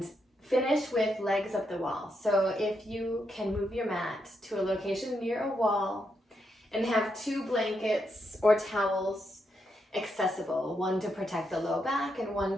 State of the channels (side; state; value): both; normal; correlation 0.81